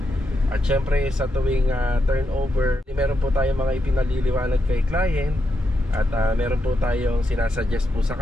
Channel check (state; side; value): normal; both; correlation 0.83